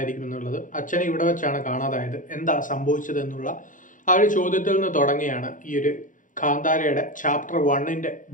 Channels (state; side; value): late; right; 0.38 ms